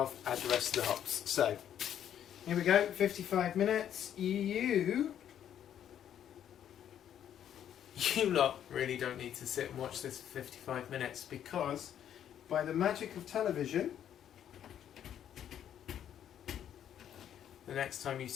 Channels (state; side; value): quieter; right; 10.0 dB